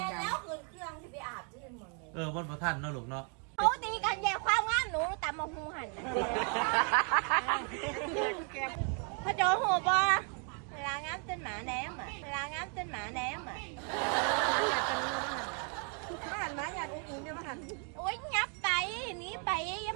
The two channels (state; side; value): quieter; left; 40.0 dB